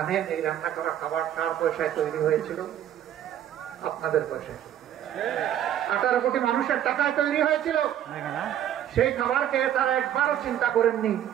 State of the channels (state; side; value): quieter; left; 10.9 dB